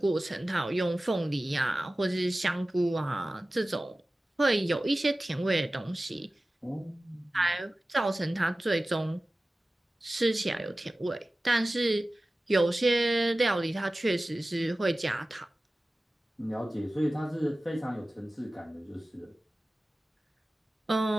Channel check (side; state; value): both; normal; correlation 0.96